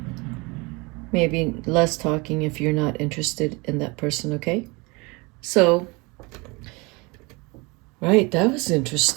Maybe less talking if you're not interested in that person, okay? So, right, that was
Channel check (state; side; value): quieter; left; 26.8 dB